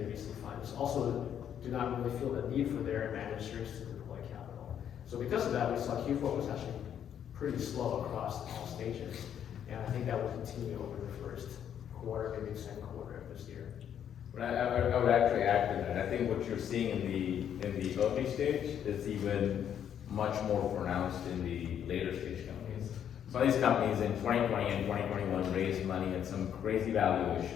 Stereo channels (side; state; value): right; quieter; 9.3 dB